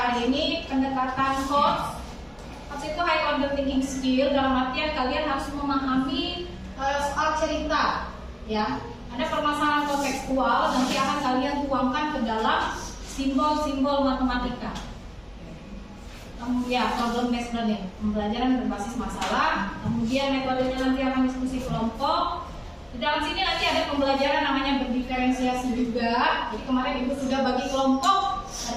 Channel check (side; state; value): both; identical; correlation 1.00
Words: ini. Pendekatan HOTS. HOTS itu high order thinking skill, dalam artian kalian harus memahami soal cerita, ya. Ada permasalahan kontekstual, nanti akan kalian tuangkan ke dalam simbol-simbol matematika. Ya, problem based learning, pembelajaran berbasis masalah. Kemudian metodenya nanti akan diskusi kelompok. Di dalam sini nanti ada pembelajaran namanya berdiferensiasi juga. Jadi kemarin ibu sudah bagi kelompok